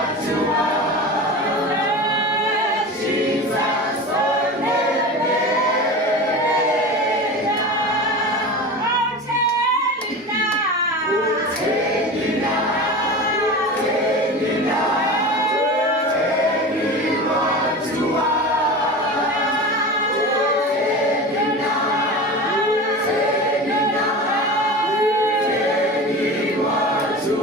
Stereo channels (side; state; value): both; normal; correlation 0.30